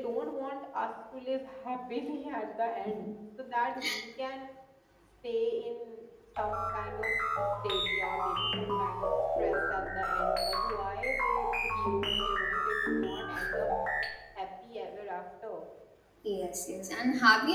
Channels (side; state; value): both; identical; correlation 1.00